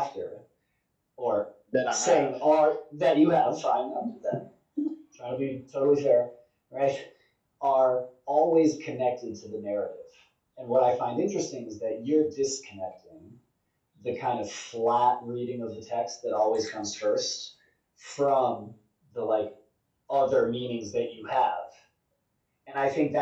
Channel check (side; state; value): both; identical; correlation 1.00